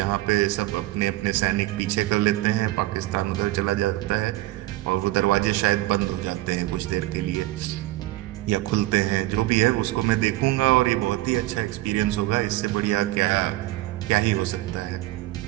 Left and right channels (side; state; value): left; quieter; 17.7 dB